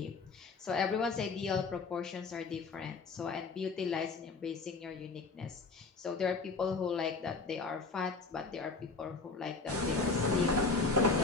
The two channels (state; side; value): quieter; right; 4.1 dB